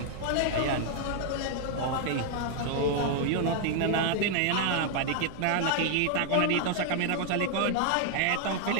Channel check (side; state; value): both; different; correlation 0.00